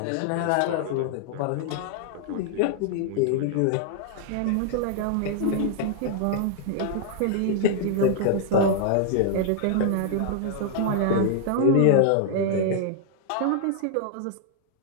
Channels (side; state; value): both; different; correlation 0.00